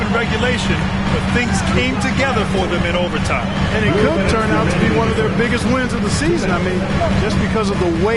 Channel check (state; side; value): identical; both; correlation 1.00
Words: in regulation, but things came together for them in overtime. And it could turn out to be one of their biggest wins of the season. I mean, just because of the